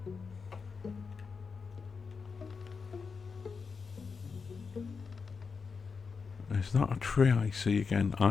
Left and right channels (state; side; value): quieter; right; 5.2 dB